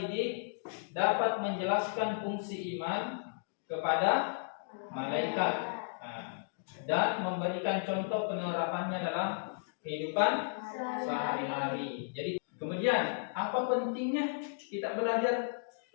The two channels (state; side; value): silent; right; digital silence